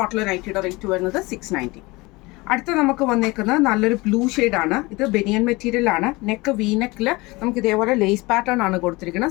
നൈറ്റിയുടെ റേറ്റ് വരുന്നത് 690. അടുത്ത നമുക്ക് വന്നേക്കുന്നത് നല്ലൊരു ബ്ലൂ ആണ്. ഇത് ബനിയൻ മെറ്റീരിയൽ ആണ്. നെക്ക് വി നെക്കിൽ നമുക്ക് ഇതേപോലെ ലേസ് പാറ്റേൺ ആണ്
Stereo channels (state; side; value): quieter; right; 23.1 dB